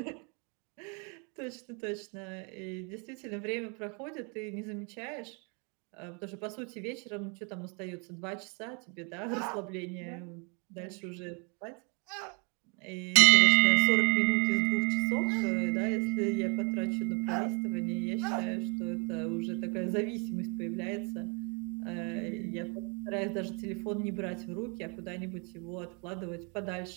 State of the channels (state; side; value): quieter; left; 34.8 dB